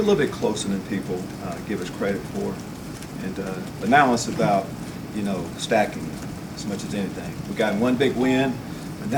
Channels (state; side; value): identical; both; correlation 1.00